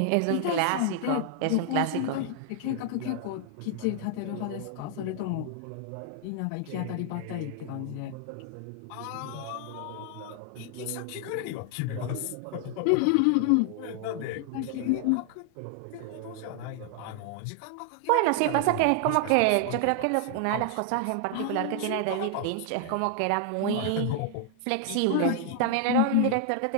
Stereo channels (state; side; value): different; both; correlation 0.00